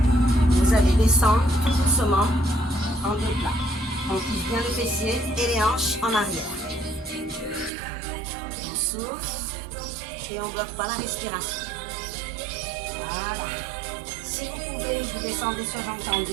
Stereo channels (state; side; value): drops out; left; at 7.7 s